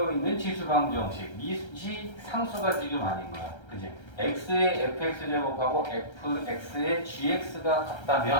있는 지수방정 형식. 미지 상수가 지금 아닌 거야. 그지? x의 fx 제곱하고 fx의 gx가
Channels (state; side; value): late; right; 1.3 ms